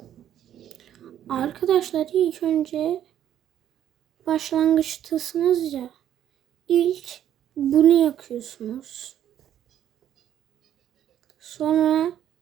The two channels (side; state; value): left; quieter; 10.7 dB